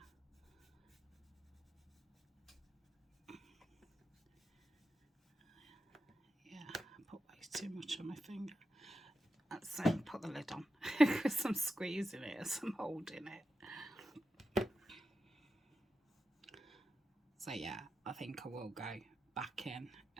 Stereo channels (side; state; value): both; normal; correlation 0.89